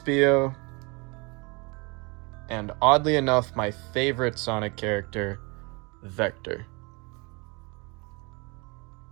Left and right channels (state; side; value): quieter; left; 28.8 dB